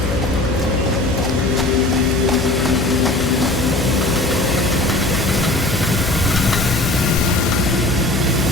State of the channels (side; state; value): left; noise; hum, 6 dB below the sound